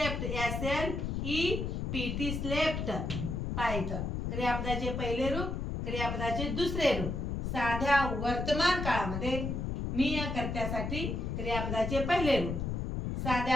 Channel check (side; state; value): left; noise; rumble, 2 dB below the sound